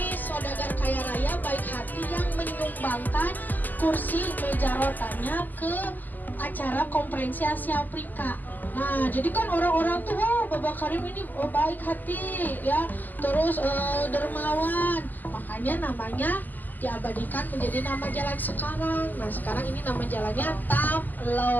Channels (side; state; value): right; late; 0.085 ms